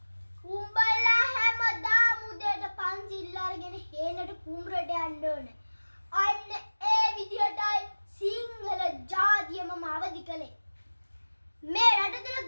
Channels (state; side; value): inverted; both; correlation -1.00